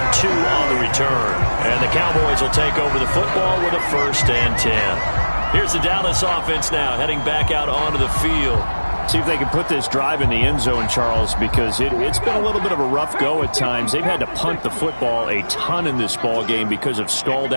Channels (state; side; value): inverted; both; correlation -1.00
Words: 2 on the return. And the Cowboys will take over the football with a 1st and 10. Here's the Dallas offense now heading back out onto the field. See if they can put this drive in the end zone, Charles, because it's been a little bit of a rough go at times. They've had to punt the football a ton in this ball game because of